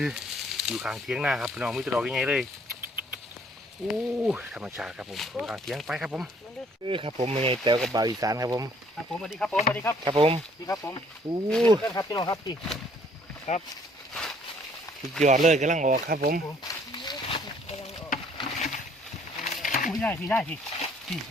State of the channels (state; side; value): normal; both; correlation 0.61